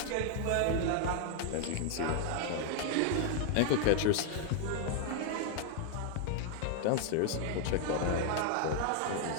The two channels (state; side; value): different; both; correlation 0.00